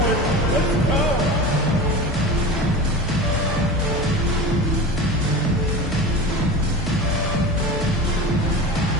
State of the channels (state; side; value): normal; both; correlation 0.31